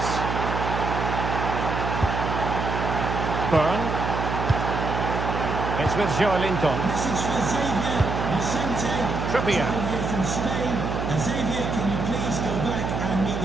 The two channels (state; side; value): noise; right; hum, 3 dB below the sound